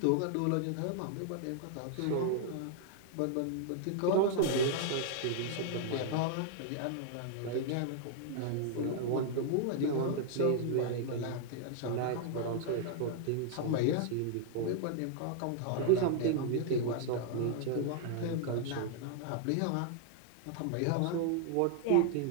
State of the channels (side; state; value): both; different; correlation -0.01